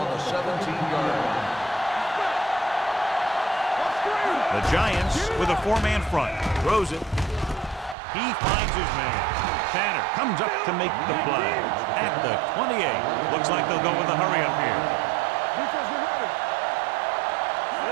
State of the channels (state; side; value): drops out; left; at 8.0 s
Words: the 17-yard line. The Giants with a four-man front. Throws it. He finds his man. Tanner comes up to make the play. At the 28. Looks like they'll go with a hurry up here.